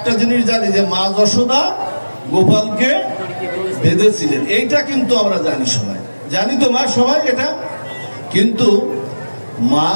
জিনিস জানি, যে মা যশোদা গোপালকে বেঁধেছিলেন, এইটা কিন্তু আমরা জানি, সবাই জানি তো মা, সবাই এটা। কিন্তু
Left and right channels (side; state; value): both; inverted; correlation -1.00